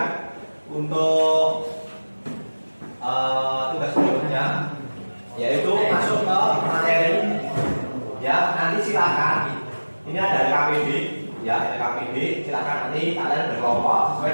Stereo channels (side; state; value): both; inverted; correlation -1.00